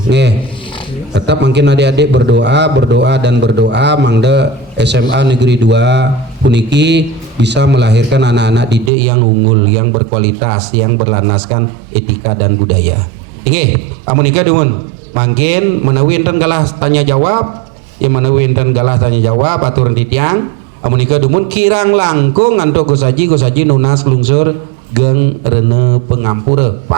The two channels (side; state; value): left; drops out; at 8.9 s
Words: Tetap mungkin adik-adik berdoa mangda SMA Negeri 2 puniki bisa melahirkan anak-anak didik yang unggul, yang berkualitas, yang berlanaskan etika dan budaya. Inge, amunika dumun. Mungkin menawi enten galah tanya jawab, yang menawi enten galah tanya jawab aturan titiang, amunika dumun kirang langkung antuk Gus Haji nunas lungsur geng rene pengampura